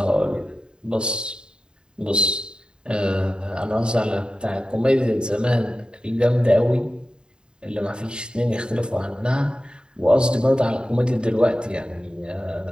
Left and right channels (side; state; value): left; late; 0.049 ms